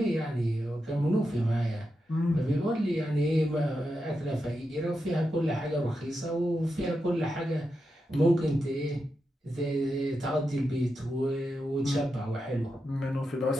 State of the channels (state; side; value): normal; both; correlation 0.87